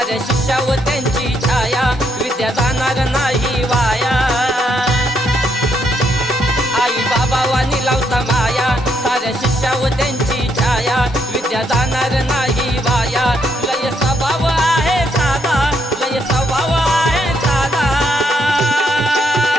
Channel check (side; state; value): both; normal; correlation 0.75